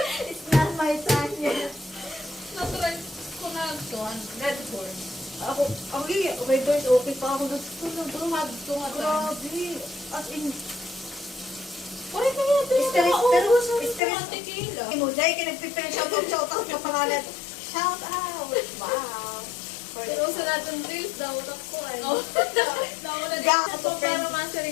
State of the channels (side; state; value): right; drops out; at 14.0 s